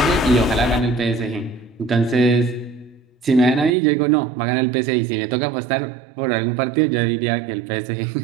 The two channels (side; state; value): left; drops out; at 3.8 s